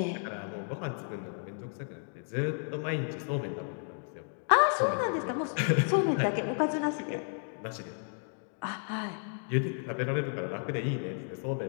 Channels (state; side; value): silent; right; 56 dB below the other